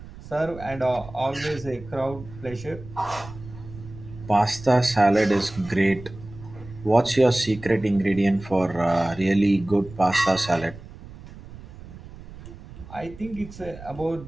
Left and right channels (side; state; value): right; noise; rumble, 16 dB below the sound